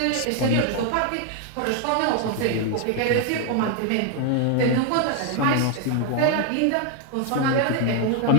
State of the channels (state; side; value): different; both; correlation 0.00